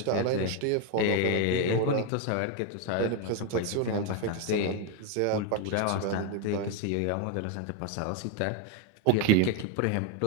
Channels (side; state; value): both; different; correlation 0.01